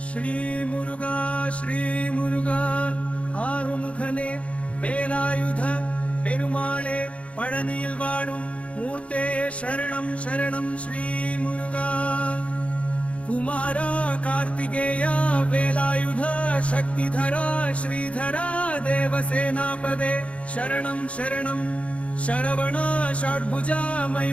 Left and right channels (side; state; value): right; late; 0.063 ms